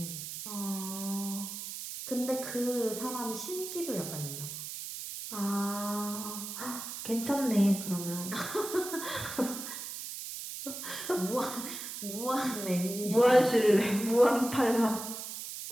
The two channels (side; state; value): right; noise; hiss, 8 dB below the sound